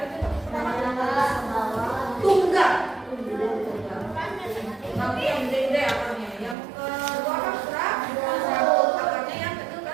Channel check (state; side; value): drops out; left; at 6.6 s